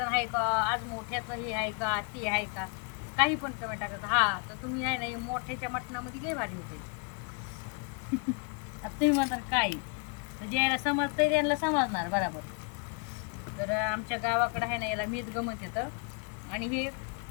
आहे का, आज मोठ्याचं हे आहे का, ते आहे का, काही पण कमेंट टाकतात. हा तर तुम्ही आहे ना मोठ्याच्या मटणामध्ये लय भारी होते. आता तुम्ही म्हणतात काय, तर ज्याला समजतंय त्यांना समजणार बरोबर. तर आमच्या गावाकडं आहे ना याला मेदगं म्हणतात. आणि हे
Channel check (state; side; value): quieter; right; 33.8 dB